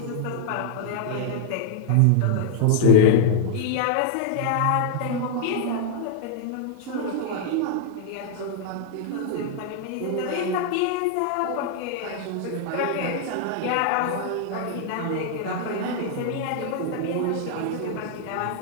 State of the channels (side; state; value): both; different; correlation -0.01